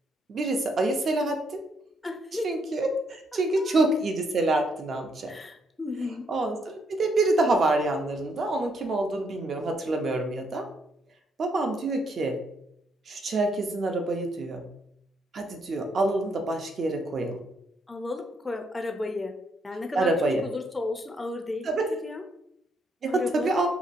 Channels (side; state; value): both; normal; correlation 0.74